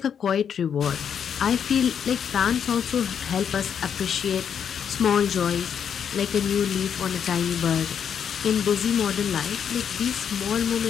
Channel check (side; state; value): right; quieter; 7.9 dB